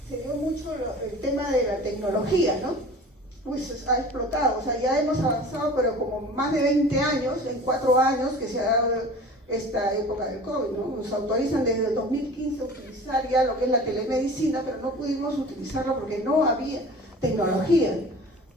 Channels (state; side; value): normal; both; correlation 0.41